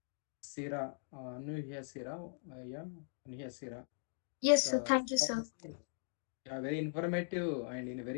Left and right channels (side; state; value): right; silent; digital silence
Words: Sira, Anuhya Sira, yeah, Anuhya Sira. Yes, sir. Thank you, sir. Yeah, very informative and in a